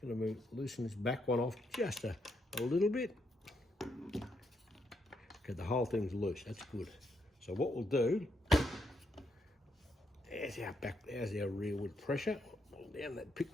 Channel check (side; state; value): both; normal; correlation 0.78